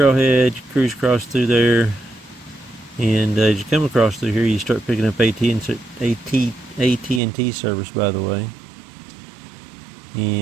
you cruise across through there, and as you come across through here, you start picking up AT&T service, by the way.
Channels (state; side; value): drops out; left; at 7.2 s